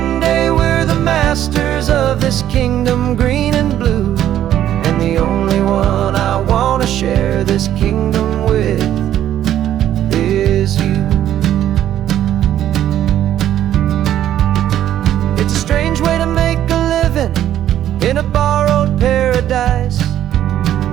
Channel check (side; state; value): left; quieter; 11.6 dB